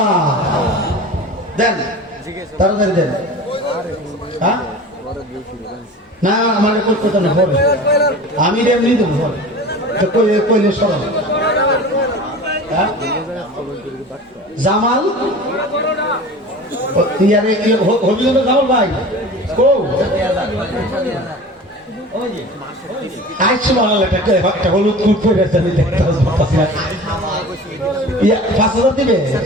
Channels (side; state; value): both; normal; correlation 0.37